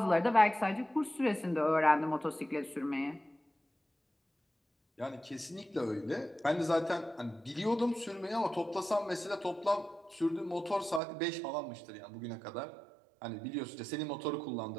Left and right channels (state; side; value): drops out; left; at 11.0 s